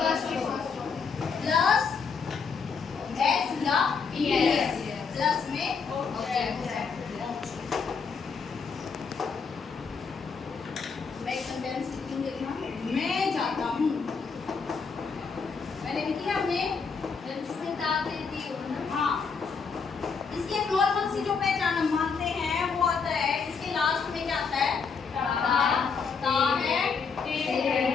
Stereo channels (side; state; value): right; quieter; 5.4 dB